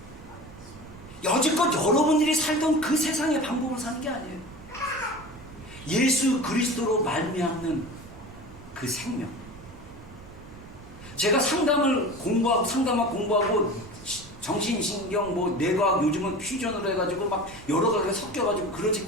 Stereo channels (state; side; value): noise; right; rumble, 19 dB below the sound